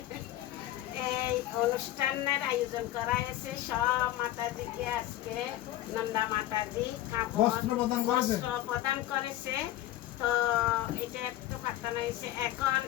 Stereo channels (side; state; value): right; quieter; 14.3 dB